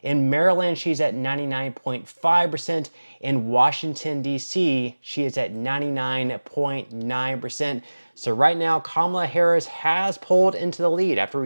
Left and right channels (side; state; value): both; inverted; correlation -1.00